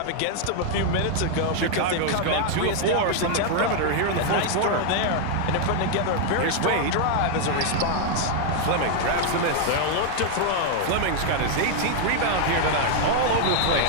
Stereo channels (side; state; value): both; different; correlation 0.00